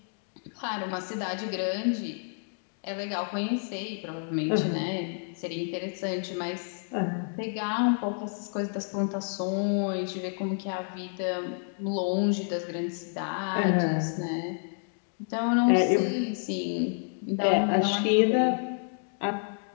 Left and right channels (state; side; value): silent; right; 58 dB below the other